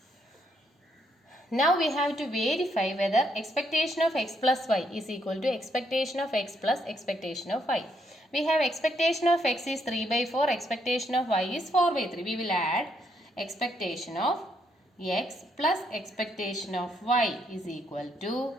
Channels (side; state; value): both; normal; correlation 0.74